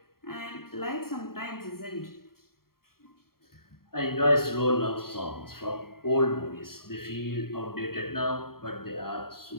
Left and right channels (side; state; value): right; late; 0.93 ms